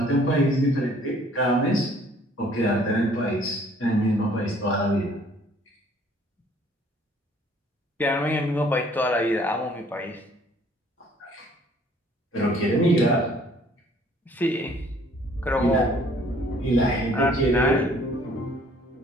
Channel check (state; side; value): normal; both; correlation 0.58